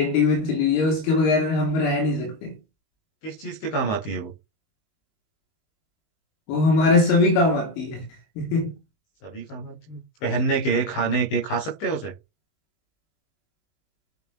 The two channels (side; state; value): right; late; 19 ms